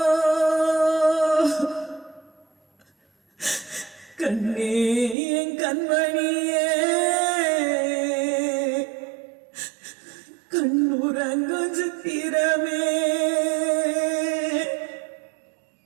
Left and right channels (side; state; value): left; drops out; at 5.2 s